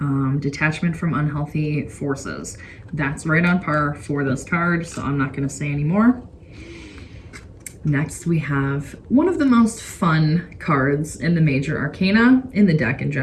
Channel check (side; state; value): both; identical; correlation 1.00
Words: detachment from unhealthy forces. That's right on par for this card, so I'm not gonna say any more. Next we have one of the most fun cards in the major arcana, in the deck in